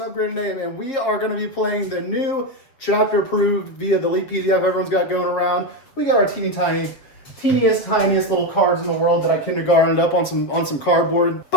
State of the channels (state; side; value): late; right; 7.5 ms